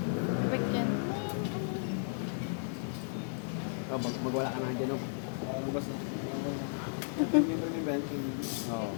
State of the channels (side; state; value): right; silent; digital silence